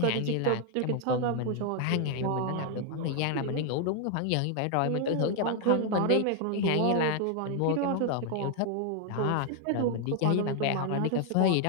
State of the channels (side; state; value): both; different; correlation 0.00